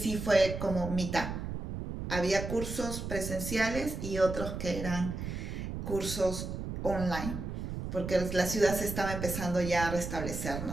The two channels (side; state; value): right; noise; rumble, 5 dB below the sound